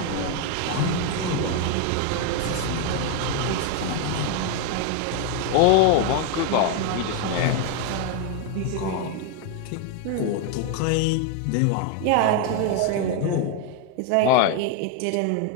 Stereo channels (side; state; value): both; different; correlation 0.01